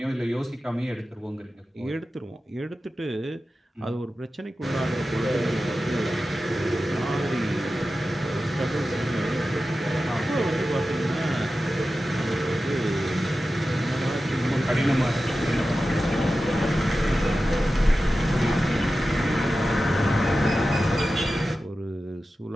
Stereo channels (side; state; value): both; normal; correlation 0.93